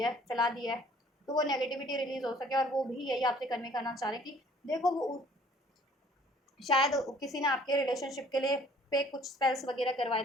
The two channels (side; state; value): both; normal; correlation 0.56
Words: चला दी है, तो वो नेगेटिविटी रिलीज हो सके। और वो भी यही आपसे कन्वे करना चाह रहे हैं कि देखो वो शायद किसी ने आपके रिलेशनशिप के लिए पे कुछ स्पेल्स वगैरह करवाए